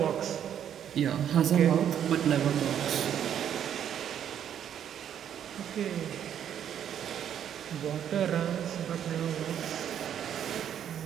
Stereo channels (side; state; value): left; quieter; 9.5 dB